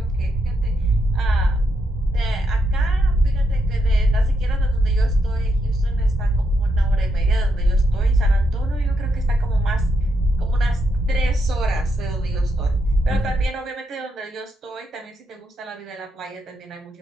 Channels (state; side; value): normal; both; correlation 0.80